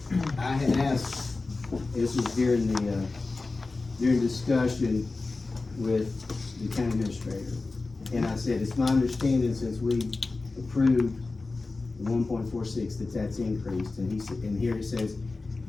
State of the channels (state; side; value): quieter; right; 3.6 dB